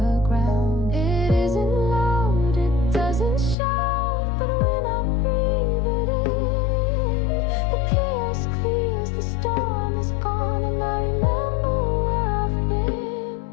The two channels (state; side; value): drops out; right; at 3.6 s